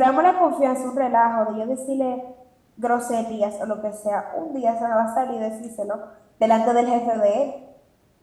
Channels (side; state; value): both; identical; correlation 1.00